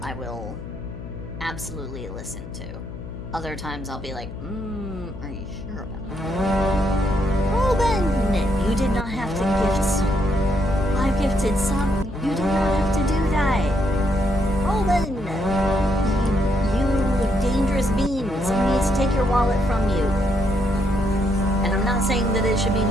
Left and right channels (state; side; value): noise; left; hum, 11 dB below the sound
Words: absolutely listen to. Other times I'll be like, are you sure about that? Ruben! You did not have to gift some. I gifted some. You did not have to do that. Ruben! You dangerous bean. Someone needs to take your wallet from you. And I'm not saying that it should be